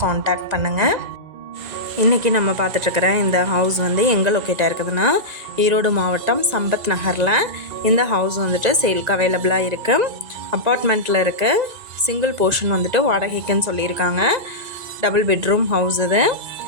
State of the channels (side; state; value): left; late; 1.9 ms